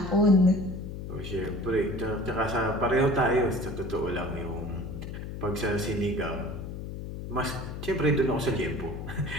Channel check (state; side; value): noise; left; hum, 8 dB below the sound